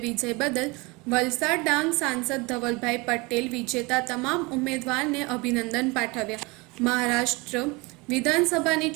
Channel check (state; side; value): quieter; left; 25.9 dB